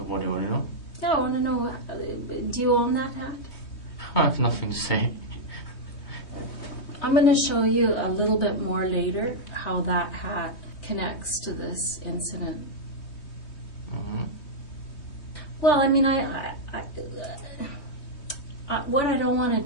do you want to know? Yeah, I want to know, do you own that hat? I have nothing to say. I'm going to show you a little bit more later how that hat connects to this incident. Well, I mean, what I don't want to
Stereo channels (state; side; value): late; right; 3.2 ms